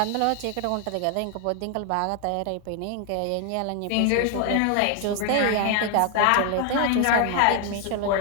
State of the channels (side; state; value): both; different; correlation 0.00